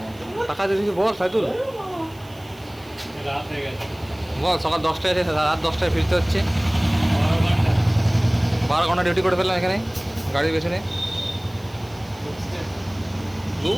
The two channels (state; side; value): noise; right; hiss, 26 dB below the sound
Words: টাকা দিয়ে কিছু বল সাইদুল, রাত হয়ে গেছে বল। সকাল 10টায় আছে, রাত 10টায় ফিরতে হচ্ছে। 12 ঘন্টা ডিউটি করে ফেললাম এখানে গাড়ির পেছনে।